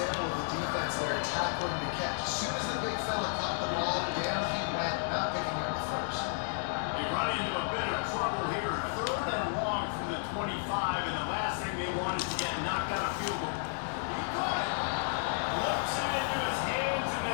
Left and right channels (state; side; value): silent; right; 56 dB below the other